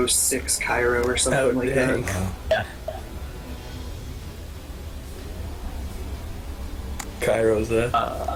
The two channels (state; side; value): identical; both; correlation 1.00